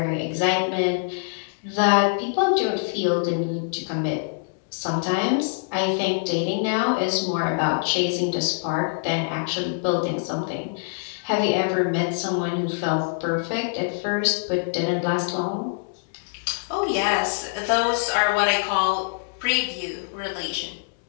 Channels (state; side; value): silent; right; digital silence